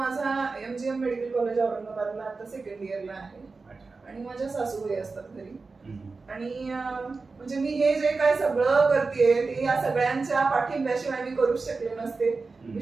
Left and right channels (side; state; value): left; quieter; 4.1 dB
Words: MGM मेडिकल कॉलेज औरंगाबादला आता सेकंड इयरला आहे आणि माझ्या सासूबाई असतात घरी. आणि म्हणजे मी हे जे काय सगळं करते ते या सगळ्यांच्या पाठिंब्याशिवाय मी करूच शकले नसते.